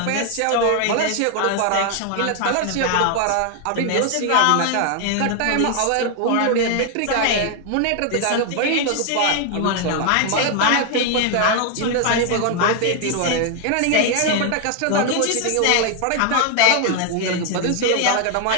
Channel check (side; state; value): both; different; correlation 0.00